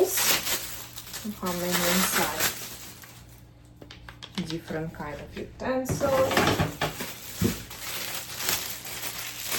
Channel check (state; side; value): identical; both; correlation 1.00